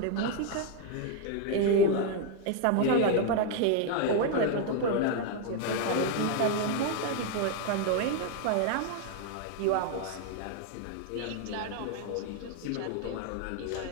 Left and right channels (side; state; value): both; different; correlation 0.01